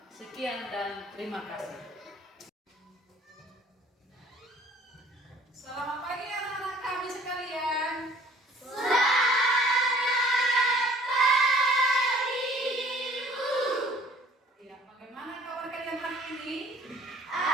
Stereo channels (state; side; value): normal; both; correlation 0.54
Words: Sekian dan terima kasih. Selamat pagi anak-anak kami sekalian. Selamat pagi, Bu. Ya, bagaimana kabar kalian hari ini?